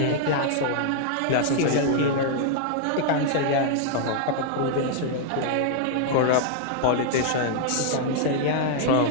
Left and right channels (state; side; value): different; both; correlation -0.01